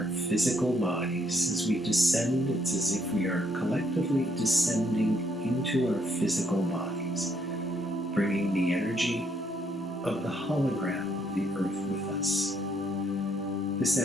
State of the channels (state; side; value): normal; both; correlation 0.71